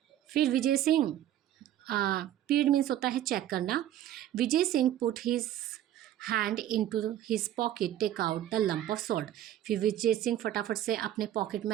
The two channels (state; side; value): quieter; left; 12.1 dB